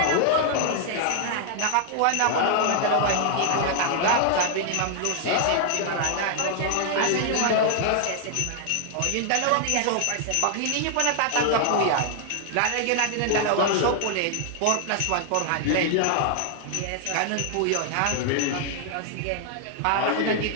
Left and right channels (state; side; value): different; both; correlation 0.00